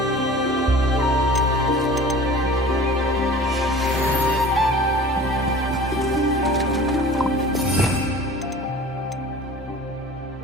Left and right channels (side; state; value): both; normal; correlation 0.42